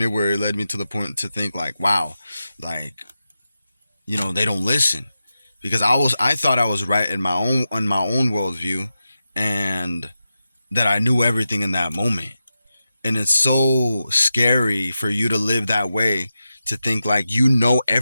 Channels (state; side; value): inverted; both; correlation -0.91